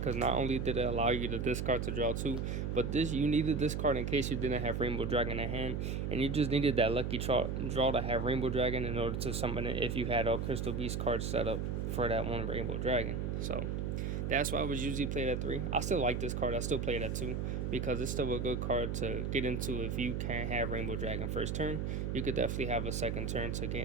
not only did it allow you to discard to draw 2, but you needed this card in case you didn't have Rainbow Dragon in hand, and you just needed that lucky draw to have Rainbow Dragon in order to summon it if you had all Crystal Beast cards set up for that 1 Rainbow Dragon. So that's why I was usually played at 3. I still like this card. I still play it at 2 because it's still a good card to get into if you can't have Rainbow Dragon first turn. You could definitely have a second turn to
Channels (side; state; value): right; noise; hum, 1 dB below the sound